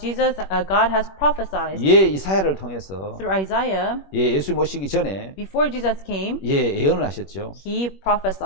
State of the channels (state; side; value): late; right; 21 ms